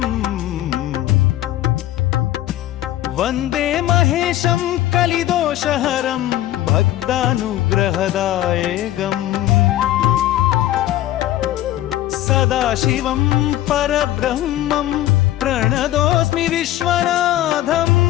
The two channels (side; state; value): right; quieter; 14.1 dB